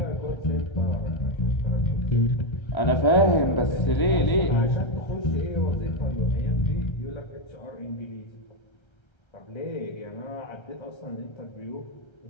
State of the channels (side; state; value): right; late; 1.3 ms